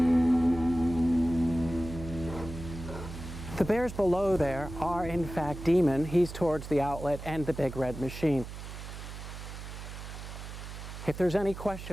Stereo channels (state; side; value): noise; right; hum, 10 dB below the sound